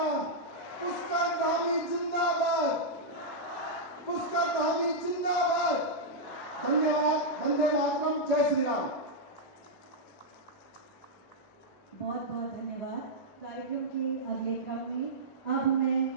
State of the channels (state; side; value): normal; both; correlation -0.06